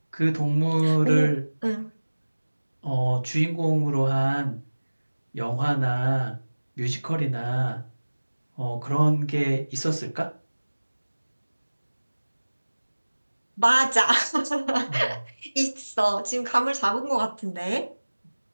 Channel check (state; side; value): inverted; both; correlation -1.00